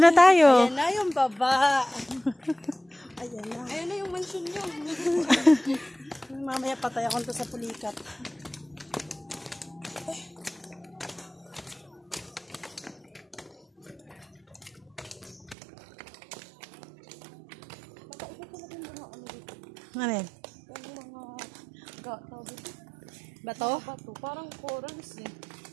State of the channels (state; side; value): drops out; left; at 15.6 s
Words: na tayo. Ayan na yung baba. Ayan na. Ayun na yung mansion nyo. Mamaya patay ako to sa pulikat. Ano yan? Yung mga gato dito. Bato? Bato, parang corals eh.